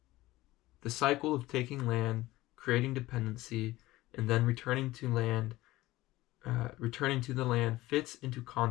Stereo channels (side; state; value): right; quieter; 17.8 dB